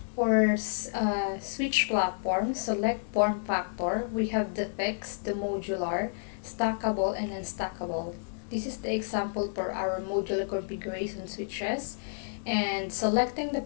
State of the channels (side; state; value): right; silent; digital silence